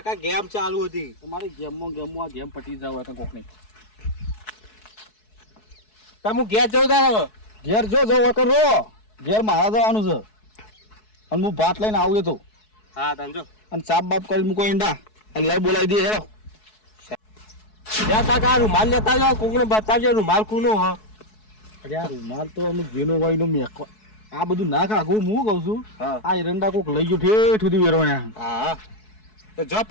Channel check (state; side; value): late; right; 4.7 ms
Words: ગેમ ચાલુ હતી તમારી ગેમમાં આ ગેમ પટી જાવ તો કોકની તમે ઘેર જવું તારે હવે ઘેર જો વખત રો ઘેર મારા જવાનું છે અને હું ભાત લઈને આવું તો હા તાંજો અને સાપ બાપ કરી મૂકો ઈંડા અને લઈ બોલાવી દે હેરો જ્યાં કાકા રૂમાલ લેતા જાઓ કોકને બતાવજો રૂમાલ કોનો હ અરે આ રૂમાલ તો અમે ઘેનો વાઈનો મેકો આ બધું ના કાઢું હું કહું છું હા આ એરંડા કોક લઈ ગયો ઠેઠ સુધી વેરવાણ્યા હા તો જો